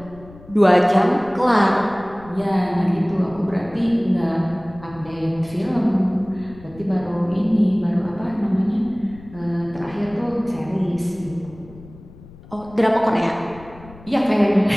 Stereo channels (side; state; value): left; noise; rumble, 20 dB below the sound